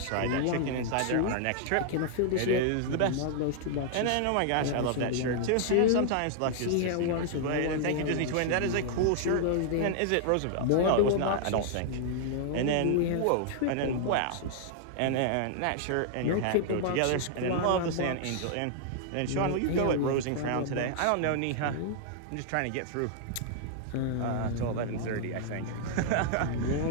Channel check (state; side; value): different; both; correlation -0.01